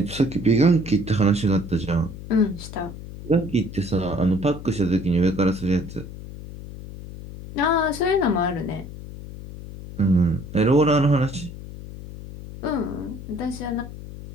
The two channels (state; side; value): noise; left; hum, 12 dB below the sound